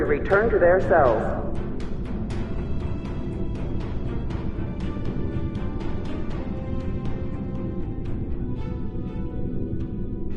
return to their cells.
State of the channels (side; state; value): both; identical; correlation 1.00